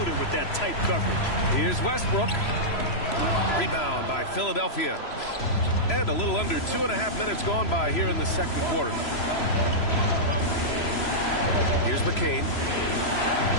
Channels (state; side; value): late; right; 3.0 ms